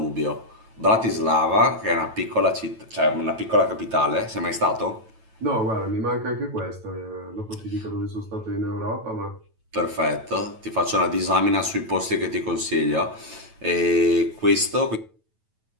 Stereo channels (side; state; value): left; late; 9.1 ms